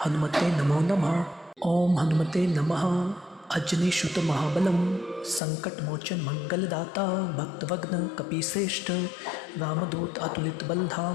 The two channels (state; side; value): drops out; right; at 5.4 s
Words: हनुमते नमो नमः। ओम हनुमते नमः। अजनीसुत महाबलम संकट मोचन मंगलदाता भक्तवग्न कपीश्रेष्ठ रामदूत अतुलित